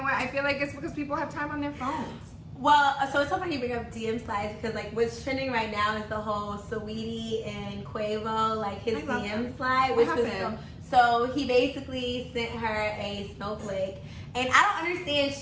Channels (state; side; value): identical; both; correlation 1.00